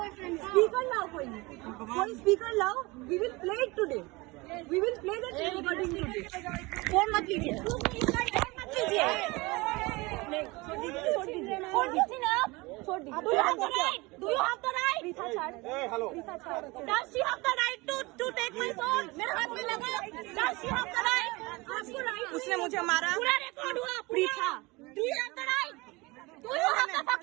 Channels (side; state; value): left; quieter; 23.8 dB